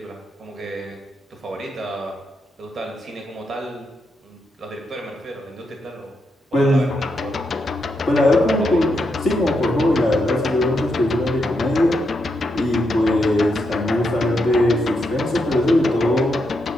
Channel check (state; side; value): normal; both; correlation 0.82